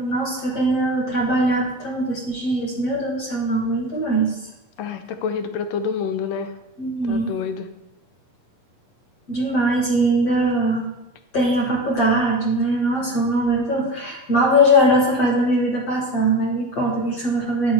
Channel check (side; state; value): right; late; 7.6 ms